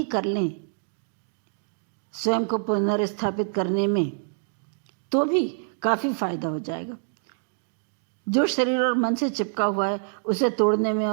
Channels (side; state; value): left; silent; digital silence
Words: कर लें स्वयं को पुनर्स्थापित करने में, तो भी काफ़ी फायदा हो जाएगा। जो शरीर और मन से चिपका हुआ है उसे तोड़ने में